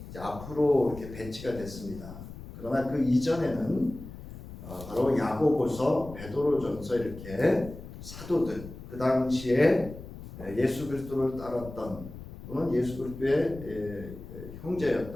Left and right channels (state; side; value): noise; left; rumble, 13 dB below the sound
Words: 이제 앞으로 이렇게 배치가 됐습니다. 그러나 그 이전에는 바로 야고보서, 베드로전서 이렇게 사도들, 그 당시에 예수 그리스도를 따랐던 또는 예수 그리스도의